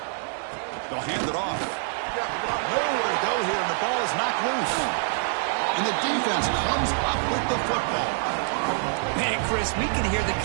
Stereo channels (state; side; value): silent; left; digital silence